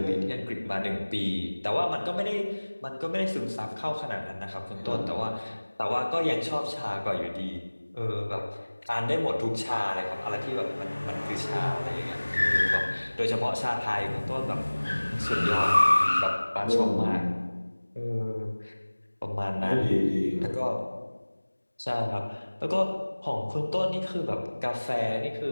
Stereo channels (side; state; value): both; inverted; correlation -1.00